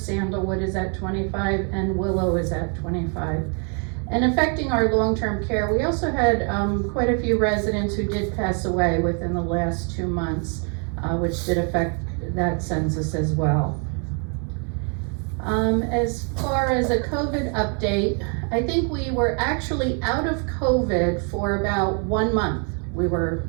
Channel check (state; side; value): quieter; left; 39.8 dB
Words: is at 25, and Willow is at 25. And affecting our long-term care, we also had quite a few residents who did pass away within the last 2 months, which did affect that census as well. As far as a COVID update, I think we were actually out of COVID for about 1 month. We were